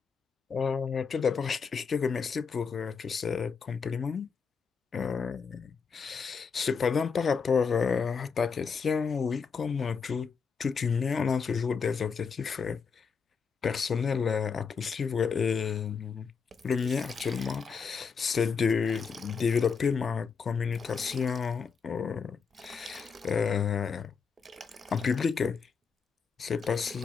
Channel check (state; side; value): quieter; right; 5.8 dB